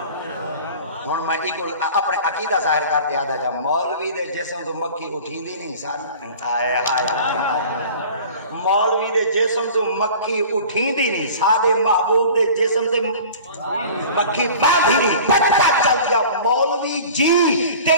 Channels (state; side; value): inverted; both; correlation -0.42